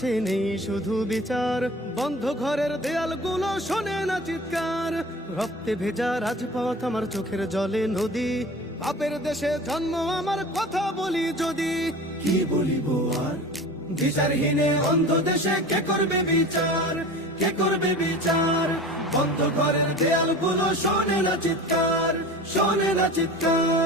নেই শুধু বিচার। বন্ধ ঘরের দেয়ালগুলো শোনে না চিৎকার। রক্তে ভেজা রাজপথ আমার চোখের জলে নদী। পাপের দেশে জন্ম আমার, কথা বলি যদি। কি বলিব আর? বিচারহীনে অন্ধ দেশে কে করবে বিচার? কে করবে বিচার? বন্ধ ঘরের দেয়ালগুলো শোনে না চিৎকার, শোনে না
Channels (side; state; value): both; normal; correlation 0.37